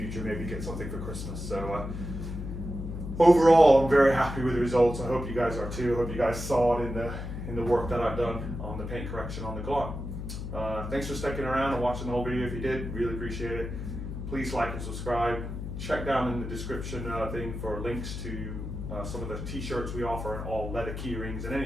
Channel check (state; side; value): noise; left; hum, 6 dB below the sound